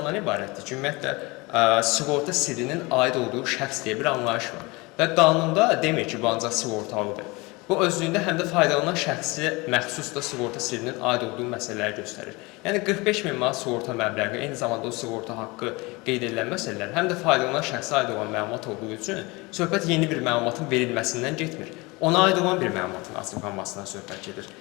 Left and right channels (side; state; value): right; quieter; 24.7 dB